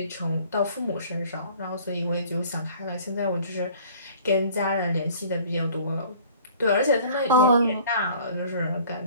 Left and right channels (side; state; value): both; inverted; correlation -0.50